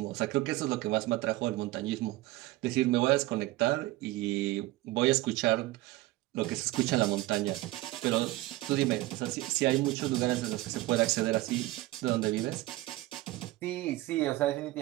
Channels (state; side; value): quieter; left; 18.1 dB